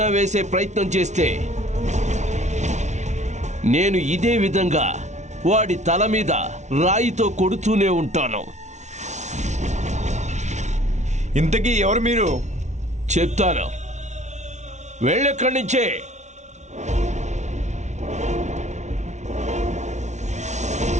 వేసే ప్రయత్నం చేస్తే నేను ఇదే విధంగా వాడి తల మీద రాయితో కొడుతూనే ఉంటాను. ఇంతకీ ఎవరు మీరు? చెప్తాను, వెళ్ళెక్కడి నుంచే.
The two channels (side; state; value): left; late; 0.33 ms